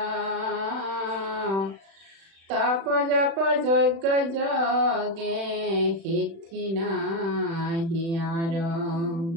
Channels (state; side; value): late; left; 36 ms